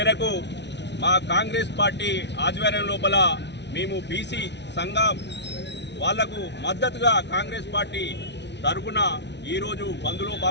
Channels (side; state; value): right; late; 0.50 ms